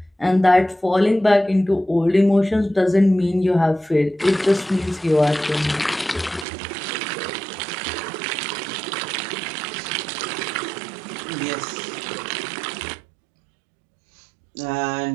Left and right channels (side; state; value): left; drops out; at 6.5 s